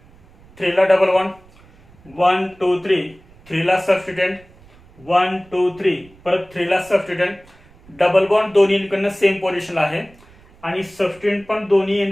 3 ला डबल बॉन्ड. 1 2 3, 3 ला सबस्टिट्यूएंट. 1 2 3, परत 3 ला सबस्टिट्यूएंट. डबल बॉन्ड दोन्ही एंडकडनं सेम पोझिशनला आहे आणि सबस्टिट्यूएंट पण दोन्ही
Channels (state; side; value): noise; right; rumble, 27 dB below the sound